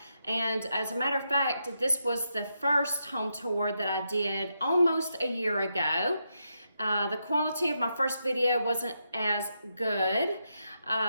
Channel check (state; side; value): inverted; both; correlation -0.83